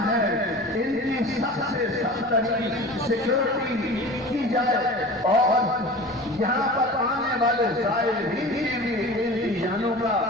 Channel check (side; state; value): both; normal; correlation 0.37